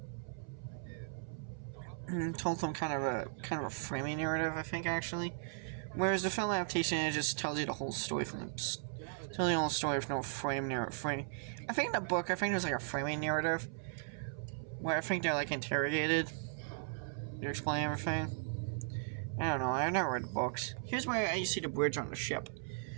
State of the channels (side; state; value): left; silent; 53 dB below the other